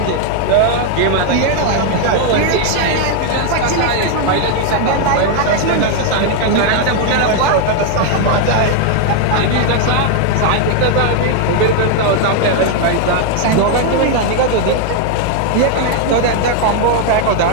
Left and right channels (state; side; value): different; both; correlation 0.00